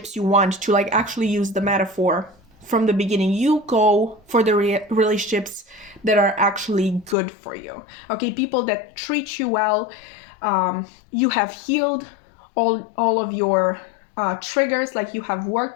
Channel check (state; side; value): drops out; right; at 7.2 s